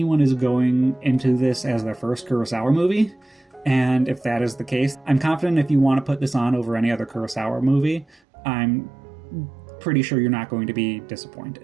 is going into this as their first Kurosawa movie, and if that is the case, I'm confident if you want to put this on over any other Kurosawa movie, I'm pretty sure you're not going to be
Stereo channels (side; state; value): left; drops out; at 8.2 s